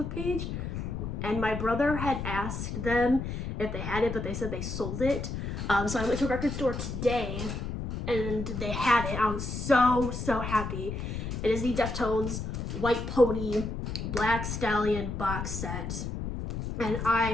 page. And my brother had asked them if they had it, but they said they sold it. So I went to a record store today and they had it. I was so happy. It is the Deftones White Pony Black Stallion box set. And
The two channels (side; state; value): left; noise; rumble, 4 dB below the sound